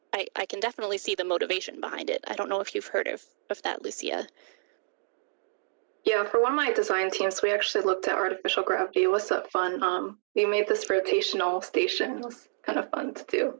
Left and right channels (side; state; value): left; silent; digital silence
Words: I can definitely see the motivation behind it. I don't know if you've heard of that, Lucia. Yeah, for one of my design teams, we actually looked at artificial gravity. It was so fun. We made this rotational station. It was kind of fun to